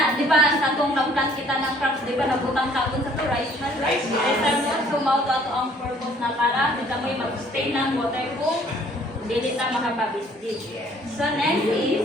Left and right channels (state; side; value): normal; both; correlation 0.58